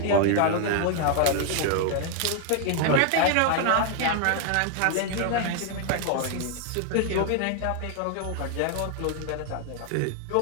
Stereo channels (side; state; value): both; different; correlation 0.00